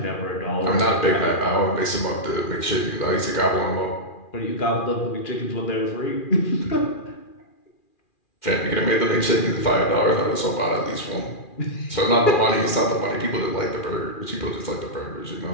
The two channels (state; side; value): late; right; 2.4 ms